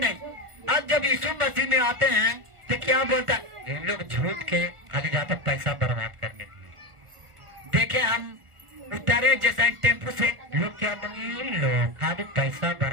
अब जब यीशु मसीह में आते हैं तो क्या बोलता है? ये लोग झूठ के खाली जाते पैसा बर्बाद करने। देखे हम उतरे जैसा टेम्पो से, लोग क्या लोग खाली पैसा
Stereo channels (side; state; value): left; late; 1.4 ms